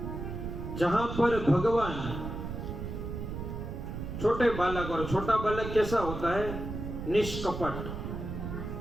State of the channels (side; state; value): right; noise; rumble, 6 dB below the sound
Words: जहां पर भगवान छोटे बालक, और छोटा बालक कैसा होता है? निष्कपट,